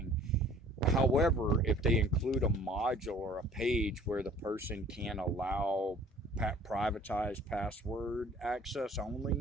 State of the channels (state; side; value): normal; both; correlation 0.52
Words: However, if they include a module or a page where the person can allow privatized password access